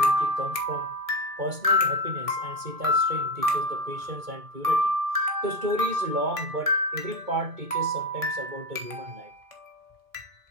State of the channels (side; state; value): left; late; 2.2 ms